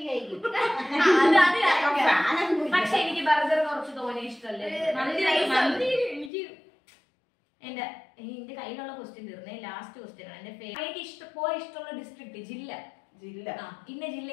പക്ഷെ എനിക്ക് ബർഗർ കുറച്ച് തോനെ ഇഷ്ടമല്ലേ. മന്തി എനിക്ക് എന്റെ കയ്യിലുള്ള ക്വസ്റ്റ്യൻ തീർന്നേ. ലാസ്റ്റ് ക്വസ്റ്റ്യൻ ആണ് എന്റെ എനിക്ക് ഇഷ്ടമുള്ള ഡിസ്ട്രിക്ട് ജില്ല ഇന്ന ജില്ല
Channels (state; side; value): drops out; right; at 6.3 s